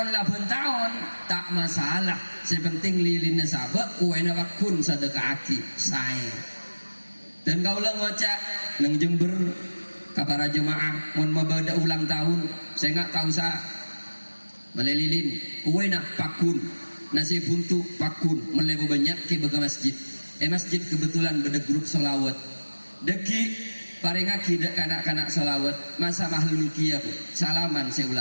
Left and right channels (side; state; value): both; inverted; correlation -1.00